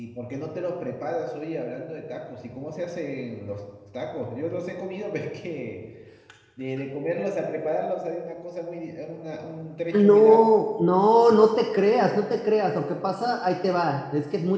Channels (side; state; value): both; identical; correlation 1.00